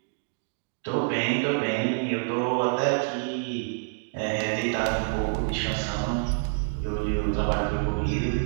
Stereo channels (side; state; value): left; silent; digital silence